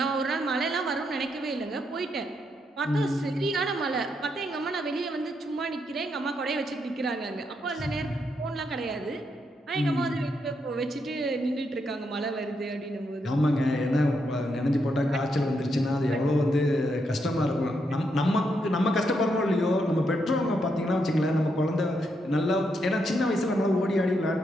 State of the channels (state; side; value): normal; both; correlation 0.80